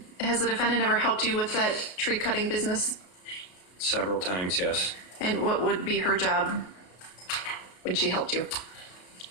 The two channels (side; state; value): right; late; 33 ms